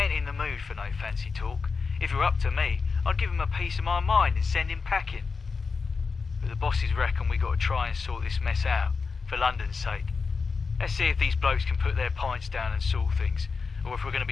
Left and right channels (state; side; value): quieter; right; 4.8 dB